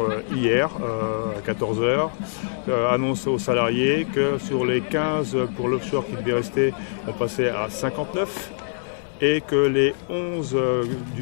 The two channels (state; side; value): silent; right; digital silence